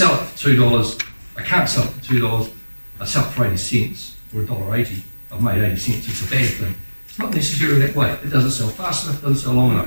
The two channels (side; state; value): both; inverted; correlation -1.00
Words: it for $2, I can't sell it for $2, I sell it for 80 cents or $1.80, I've made 80 cents, it's a bad thing. It's not necessarily that way. It doesn't sell fast enough, it doesn't sell long enough.